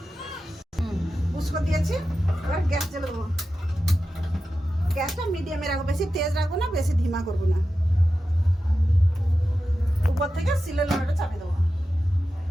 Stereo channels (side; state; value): both; normal; correlation 0.92